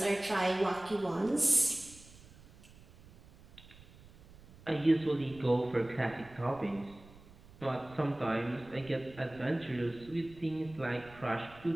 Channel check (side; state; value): right; noise; rumble, 22 dB below the sound